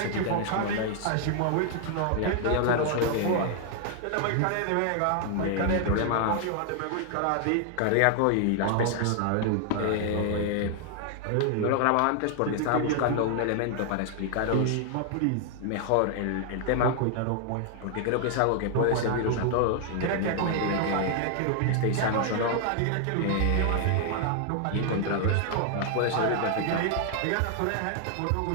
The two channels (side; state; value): both; different; correlation 0.00